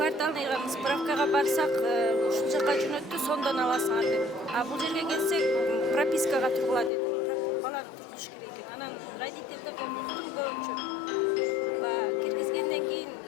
справкага барсак, ушул жака жөнөттү, сондон аласыңар деп. А бул жерге келсек, пропискага тургула деди. Баланы тургузуш керек экен. Анан родительдерден уктум көбүнчө. Киргизгенден кийин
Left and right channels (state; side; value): drops out; right; at 6.9 s